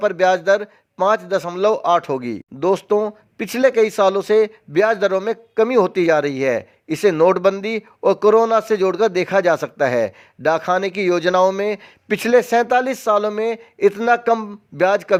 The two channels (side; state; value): both; identical; correlation 1.00